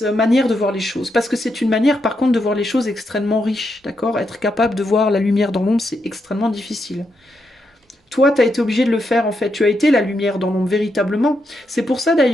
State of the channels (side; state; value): both; normal; correlation 0.82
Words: de voir les choses. Parce que c'est une manière par contre de voir les choses extrêmement riche, d'accord? Être capable de voir la lumière dans l'ombre, c'est extrêmement difficile. Toi, tu as été obligé de le faire en fait. Tu as été la lumière dans l'ombre véritablement. C'est pour ça